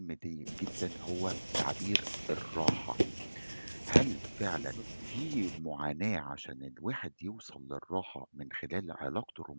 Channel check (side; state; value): both; inverted; correlation -1.00